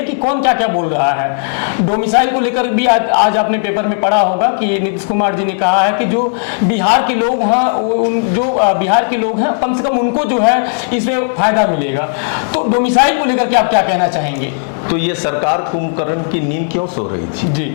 कि कौन क्या क्या बोल रहा है। डोमिसाइल को लेकर भी आज आपने पेपर में पढ़ा होगा कि नीतीश कुमार जी ने कहा है कि जो बिहार के लोग हैं, जो बिहार के लोग हैं, कम से कम उनको जो है इसमें फायदा मिलेगा। तो डोमिसाइल को लेकर के आप क्या कहना चाहेंगे? तो ये सरकार कुंभकर्ण की नींद क्यों सो रही थी जी?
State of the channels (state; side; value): silent; right; digital silence